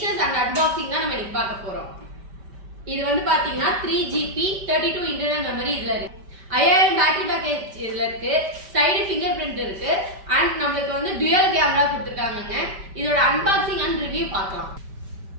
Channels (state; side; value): late; left; 5.1 ms